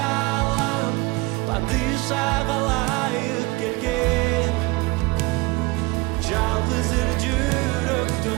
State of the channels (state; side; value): quieter; left; 24.0 dB